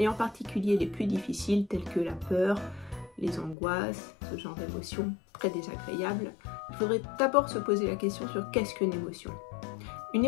en particulier les plus difficiles telles que la peur, les angoisses, ce genre d'émotions très désagréables? Il faudrait d'abord se poser la question sur qu'est-ce qu'une émotion. Une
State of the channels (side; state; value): right; drops out; at 3.6 s